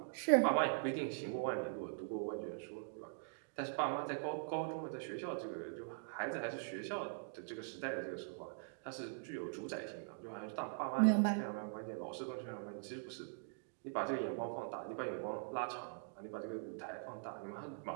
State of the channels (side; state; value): left; silent; digital silence